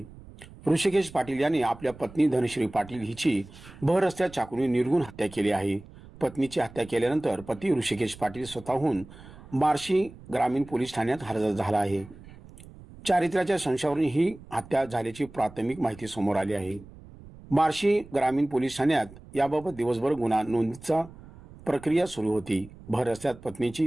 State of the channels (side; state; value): right; noise; rumble, 19 dB below the sound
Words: ऋषिकेश पाटील यांनी आपल्या पत्नी धनश्री पाटील हिची भर रस्त्यात चाकूने निर्घृण हत्या केली आहे। पत्नीची हत्या केल्यानंतर पती ऋषिकेश पाटील स्वतःहून बार्शी ग्रामीण पोलीस ठाण्यात हजर झाला आहे। चारित्र्याच्या संशयावरून ही हत्या झाल्याची प्राथमिक माहिती समोर आली आहे। बार्शी ग्रामीण पोलीस ठाण्यात याबाबत दिवसभर गुन्हा नोंदीचा प्रक्रिया सुरू होती। भर रस्त्यात